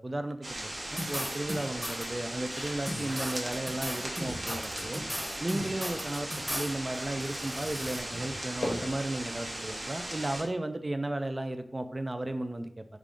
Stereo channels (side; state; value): both; normal; correlation 0.98